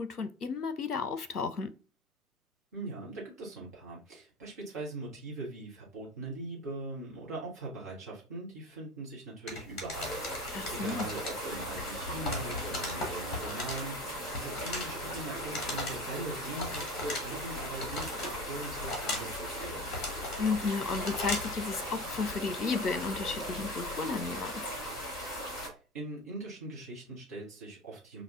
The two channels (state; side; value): normal; both; correlation 0.32